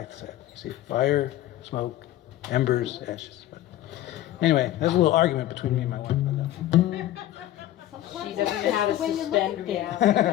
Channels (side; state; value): right; quieter; 13.7 dB